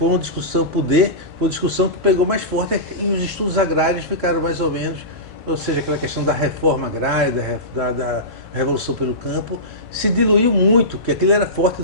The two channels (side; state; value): both; normal; correlation -0.19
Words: uma discussão poder, foi uma discussão que pegou mais forte e os estudos agrários ficaram mais ou menos, ou seja, aquela questão da reforma agrária, da revolução pelo campo, se diluiu muito, porque aquilo era forte